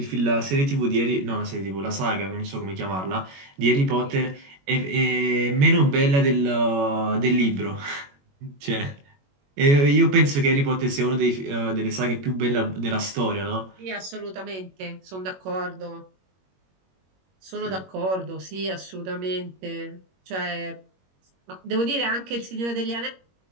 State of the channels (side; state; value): left; late; 21 ms